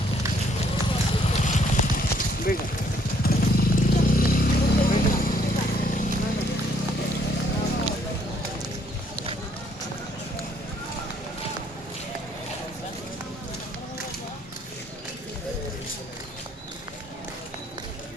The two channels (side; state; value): both; normal; correlation 0.66